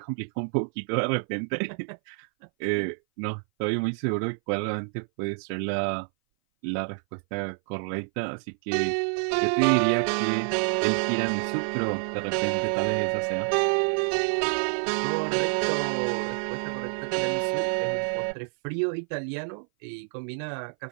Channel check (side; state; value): left; silent; 58 dB below the other